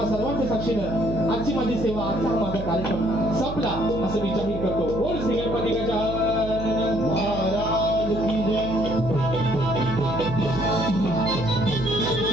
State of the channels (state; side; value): noise; right; hum, 8 dB below the sound